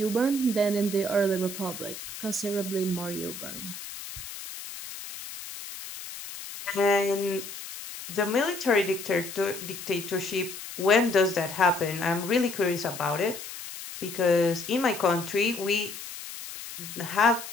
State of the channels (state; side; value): noise; left; hiss, 11 dB below the sound